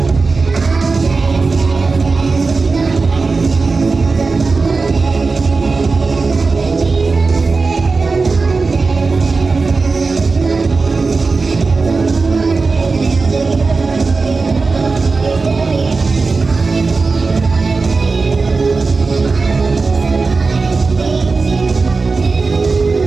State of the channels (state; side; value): quieter; left; 4.1 dB